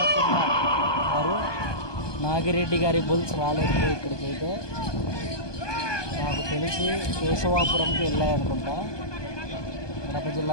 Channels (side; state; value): right; late; 1.2 ms